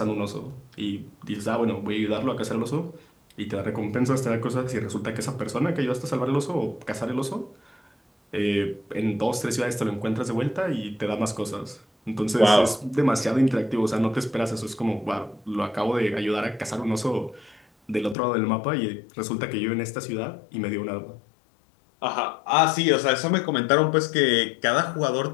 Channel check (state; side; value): drops out; right; at 18.2 s